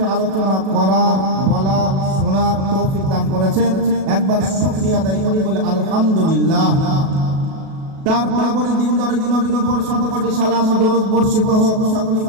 আলোচনা করা বলা শোনার তৌফিক দান করেছেন। একবার শুকরিয়া আদায় করি বলে আলহামদুলিল্লাহ। তারপরে দিন দরদি নবীর উপর শত কোটি সালাম ও দরুদ বর্ষিত হোক। সকলে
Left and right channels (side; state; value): left; late; 37 ms